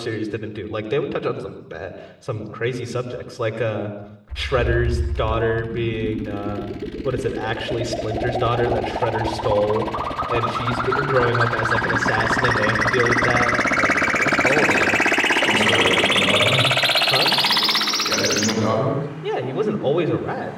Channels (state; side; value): identical; both; correlation 1.00